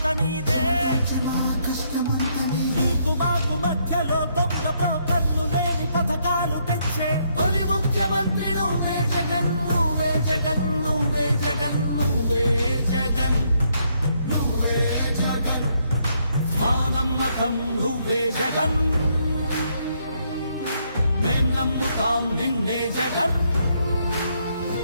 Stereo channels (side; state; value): both; inverted; correlation -0.73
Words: నీదే నీకు మాకు మధ్యలో దొంగ బ్రోకర్లు లేని పథకాలు తెచ్చే తొలి ముఖ్యమంత్రి నువ్వే జగన్ నువ్వే జగన్ నువ్వే జగన్ నువ్వే జగన్ నువ్వే జగన్ మా నమ్మకం నువ్వే జగన్ మేం నమ్ముతాం నిన్నే జగన్